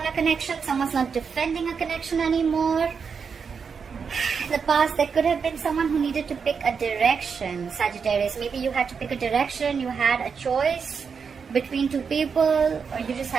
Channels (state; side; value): quieter; left; 6.0 dB